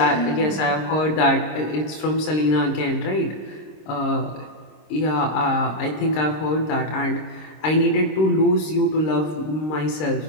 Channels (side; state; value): right; late; 26 ms